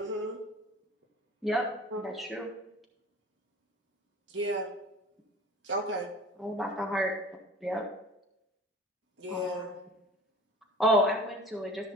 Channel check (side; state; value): both; normal; correlation 0.43